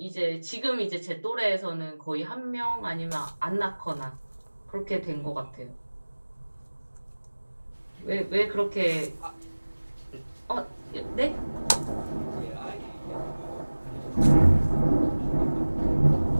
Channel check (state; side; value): inverted; both; correlation -1.00